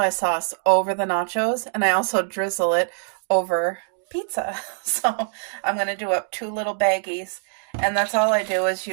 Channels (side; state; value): left; silent; digital silence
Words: sauce over the nachos, and I also drizzle it over pizza. So I'm going to do up 2 little baggies. And that's all I do is